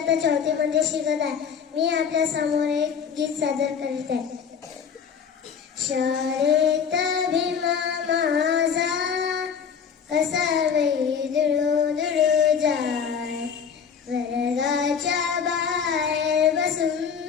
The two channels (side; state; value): right; quieter; 6.9 dB